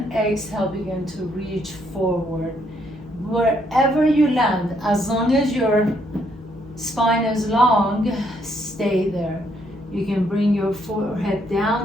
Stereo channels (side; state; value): both; normal; correlation 0.72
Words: exhale, begin to reach forward. Wherever you land, as long as your spine is long, stay there. You can bring your forehead